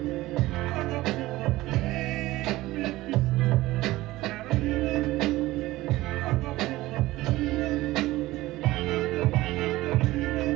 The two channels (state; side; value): quieter; left; 17.9 dB